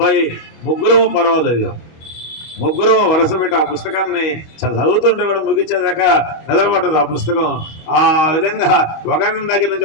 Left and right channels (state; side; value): late; right; 25 ms